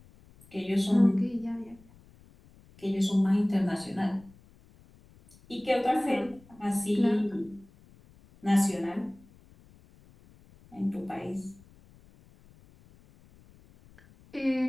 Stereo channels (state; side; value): noise; left; rumble, 26 dB below the sound